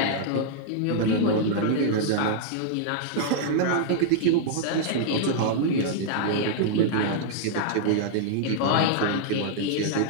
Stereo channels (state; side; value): different; both; correlation -0.01